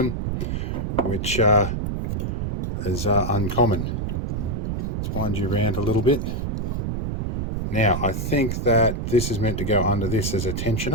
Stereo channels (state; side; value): noise; right; rumble, 1 dB below the sound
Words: which is uncommon. Let's wind you around a little bit. Now, I think that this is meant to go under this as a